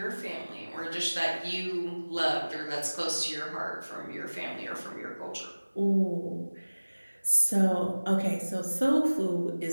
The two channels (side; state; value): both; inverted; correlation -1.00